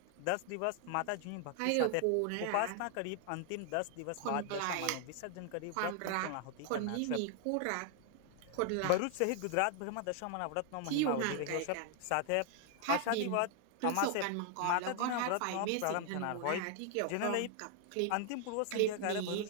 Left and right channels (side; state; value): both; different; correlation 0.00